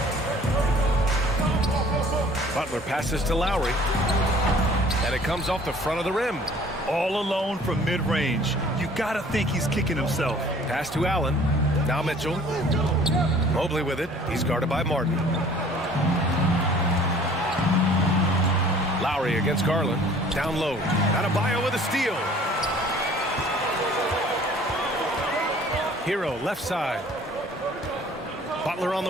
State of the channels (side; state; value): both; normal; correlation 0.52